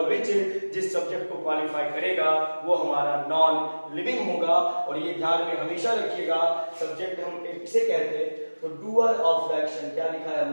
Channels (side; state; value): both; inverted; correlation -1.00